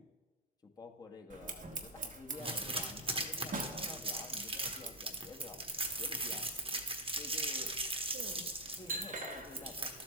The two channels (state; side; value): normal; both; correlation 0.01